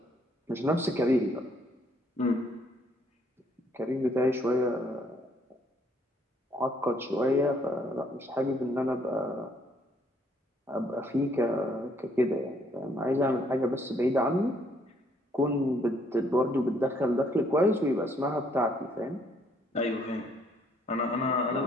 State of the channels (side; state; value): both; normal; correlation 0.67